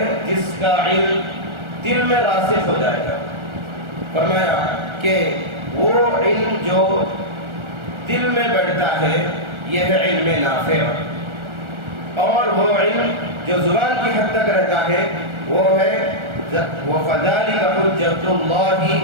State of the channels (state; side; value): late; left; 1.4 ms